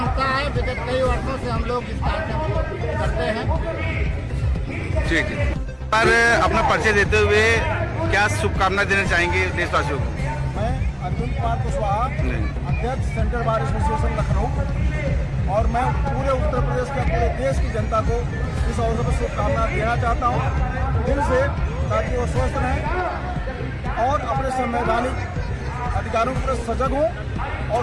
है। विगत कई वर्षों से हम लोग इस कार्य करते हैं। ठीक है, पर अपना परिचय देते हुए क्या शुभकामना देना चाहेंगे देशवासियों को? मैं अर्जुन कुमार कुशवाहा, अध्यक्ष सेंट्रल बार एसोसिएशन लखनऊ, और मैं पूरे उत्तर प्रदेश के पूरे देश की जनता को इस अवसर पर शुभकामना देना चाहता हूँ दिल से, ताकि वो स्वस्थ रहें और अपने संवैधानिक अधिकारों पर सजग हों और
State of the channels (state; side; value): identical; both; correlation 1.00